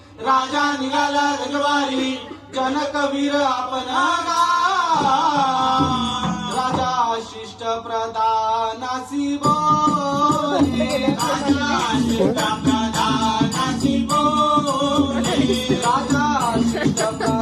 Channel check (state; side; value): identical; both; correlation 1.00